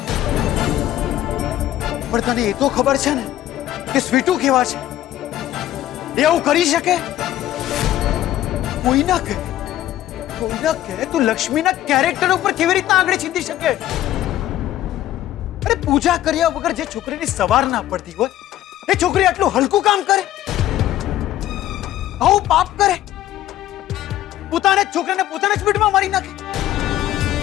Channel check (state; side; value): quieter; right; 13.4 dB